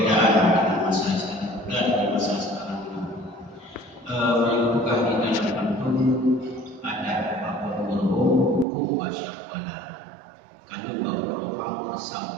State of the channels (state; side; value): drops out; left; at 8.7 s